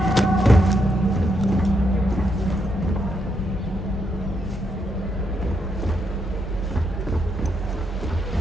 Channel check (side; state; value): both; normal; correlation 0.79